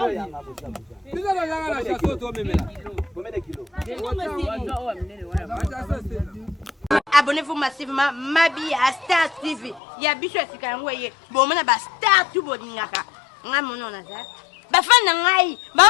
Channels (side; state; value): right; drops out; at 9.8 s